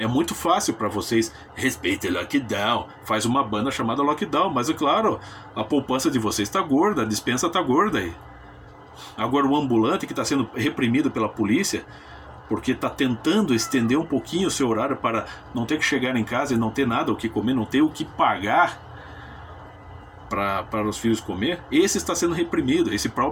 muito fácil para vocês. Respeite Lockdown. Faz uma banda chamada Lockdown. Mas é claro, a poupança de vocês está gorda. A dispensa está gorda aí. Agora o ambulante que está sendo reprimido pela polícia, porque está tentando estender um pouquinho o seu horário para não ter que chegar em casa e não ter nada o que comer, não ter o que pagar para os filhos comer, esse está sendo reprimido. Esse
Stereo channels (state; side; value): identical; both; correlation 1.00